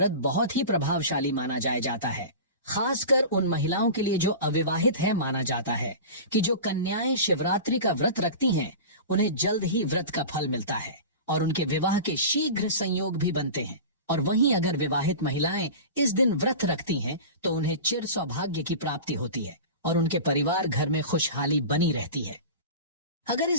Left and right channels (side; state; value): both; inverted; correlation -0.32